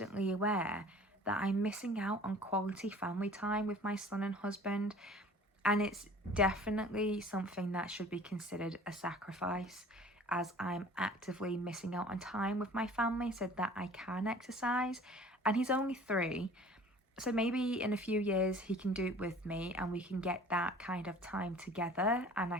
aware that I'm missing out on quality family time with my son and husband. And it's definitely something that should be considered a sacrifice, as I'm actively missing out on time with my family so that I can exercise. And he's only 3, so maybe in a few years he can do it with me and we can get that kind of time together, and I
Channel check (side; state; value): both; normal; correlation 0.47